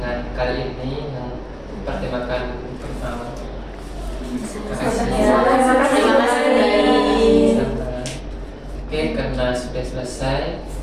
kali ini yang bertemakan burnout. Terima kasih. Oke, karena sudah selesai,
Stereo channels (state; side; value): identical; both; correlation 1.00